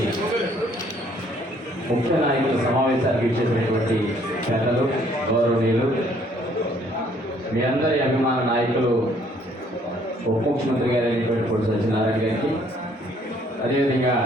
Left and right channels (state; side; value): normal; both; correlation 0.63